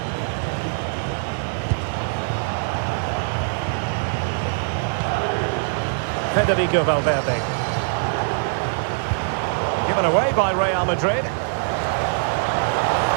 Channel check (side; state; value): left; silent; digital silence